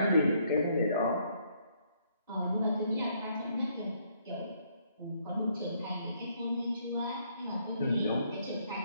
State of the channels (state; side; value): inverted; both; correlation -0.69